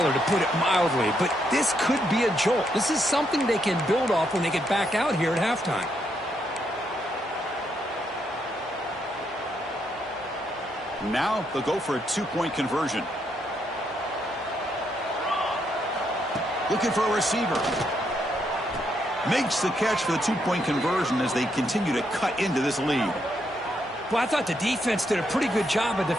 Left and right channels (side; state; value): both; normal; correlation 0.77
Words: to put it mildly, but this could be a jolt. This is something they can build off when they get back out here at halftime. Now they'll go for a two-point conversion. Looking for a receiver. Makes the catch for the two-point conversion as they continue to cut into this lead. Well, I thought the defense did a pretty good job of